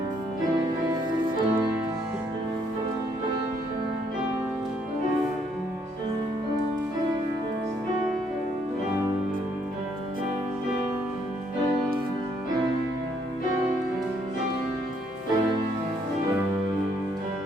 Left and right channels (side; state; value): both; normal; correlation 0.69